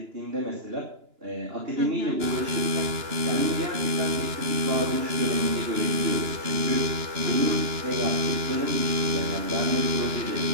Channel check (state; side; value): late; left; 2.9 ms